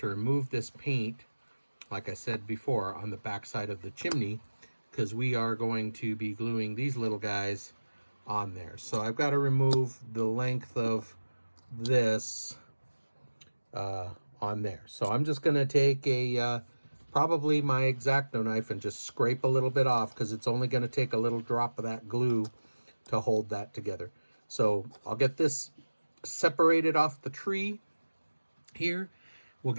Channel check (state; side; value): inverted; both; correlation -1.00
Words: remove this paint, like I said before, on the back side of the chimney, because we are going to be gluing these little guys on there. So I've got to remove the length of this on there. So I'm just going to take a probably my X-Acto knife and just scrape a little bit off, because it's only going to take a little drop of that glue to hold that together. So I'll get this separated off the tree here. We'll